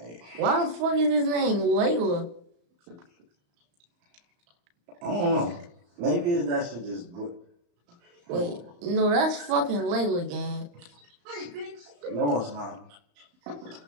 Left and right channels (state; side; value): late; left; 34 ms